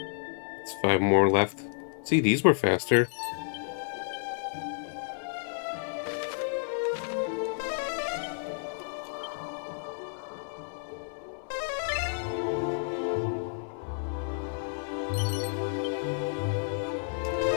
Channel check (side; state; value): right; silent; 57 dB below the other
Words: it's 5 more left. See, these were faster.